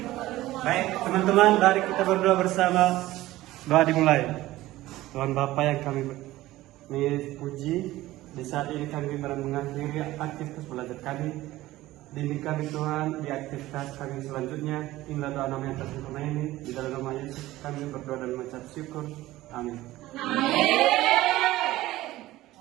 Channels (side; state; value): left; quieter; 16.6 dB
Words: Baik teman-teman, mari kita berdoa bersama. Doa dimulai. Tuhan Bapa yang kami puji, di saat ini kami mengakhiri aktivitas belajar kami. Bimbing kami Tuhan di aktivitas kami selanjutnya. Inilah doa nama yang tersempurna ini. Di dalam nama Yesus kami berdoa dan mengucap syukur. Amin.